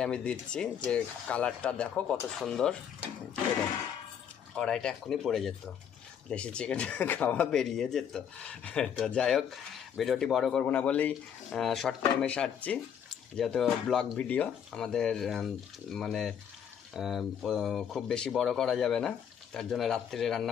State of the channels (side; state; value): right; quieter; 8.3 dB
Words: আমি দিচ্ছি। যে কালারটা দেখো কত সুন্দর, কড়াইটা এক্ষুনি পড়ে যেত, দেশি চিকেন খাওয়া বেরিয়ে যেত। তো যাই হোক, ভিডিওটি বড় করব না বলেই শর্ট টাইমে সারছি, যেহেতু ব্লগ ভিডিও আমাদের মানে খুব বেশি বড় করা যাবে না, তার জন্য রাত্রে